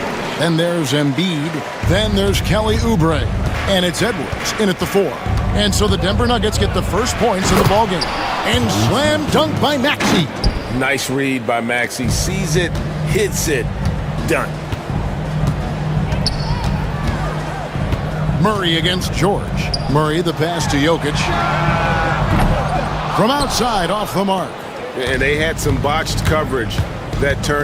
Then there's Embiid. Then there's Kelly Oubre. And it's Edwards in at the 4. And so the Denver Nuggets get the first points in the ballgame. And slam dunk by Maxey. Nice read by Maxey. Sees it, hits it, done. Murray against George. Murray the pass to Jokic. From outside off the mark. And they had some botched coverage that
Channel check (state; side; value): identical; both; correlation 1.00